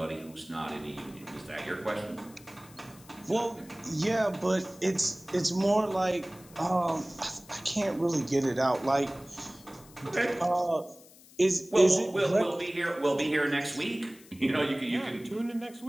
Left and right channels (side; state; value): left; noise; hiss, 23 dB below the sound